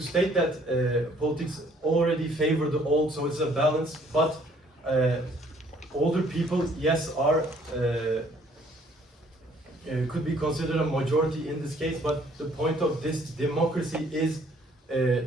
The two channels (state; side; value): normal; both; correlation 0.61